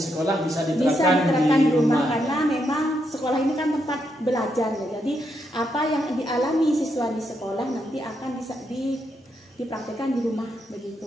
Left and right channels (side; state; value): both; normal; correlation 0.80